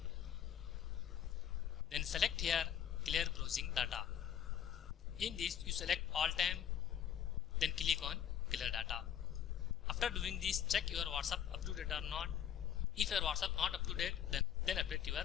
Then select here clear browsing data. In this you select all time, then click on clear data. After doing this, check your WhatsApp up to date or not. If your WhatsApp not up to date, then update your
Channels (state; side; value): quieter; right; 9.6 dB